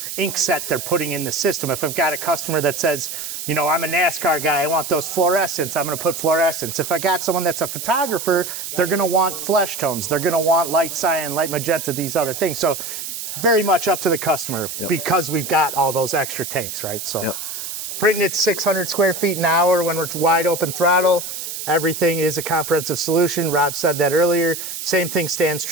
ink set they're putting in the system. If I've got a customer that says, you know, I'm a NASCAR guy, I want those fluorescents, I'm gonna put fluorescents. If I got someone that's a photographer, they're gonna want flesh tones, they're gonna want light cyan, light magenta, these other things. So very much up to the customer because we've got all those extra tanks, right? So printing at 600 square feet an hour when we're wide open throttle. Everything is a comprehensive solution. Rob said that earlier. Same thing stands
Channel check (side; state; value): right; noise; hiss, 7 dB below the sound